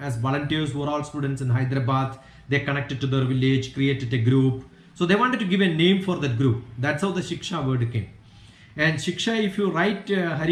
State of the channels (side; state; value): both; identical; correlation 1.00